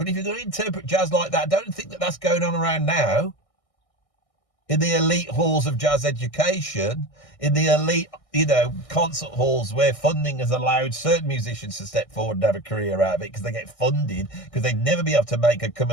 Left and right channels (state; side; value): late; right; 1.6 ms